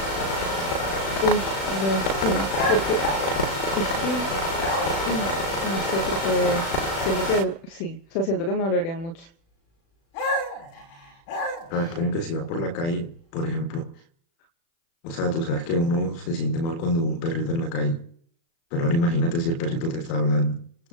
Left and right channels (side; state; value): right; late; 36 ms